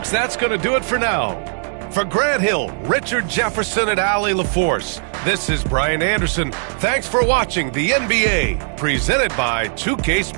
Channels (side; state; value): left; silent; 66 dB below the other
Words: that's going to do it for now. For Grant Hill, Richard Jefferson, and Allie LaForce, this is Brian Anderson. Thanks for watching the NBA, presented by 2K